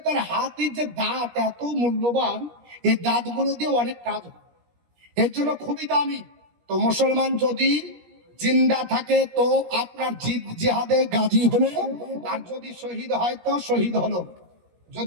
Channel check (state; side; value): late; left; 17 ms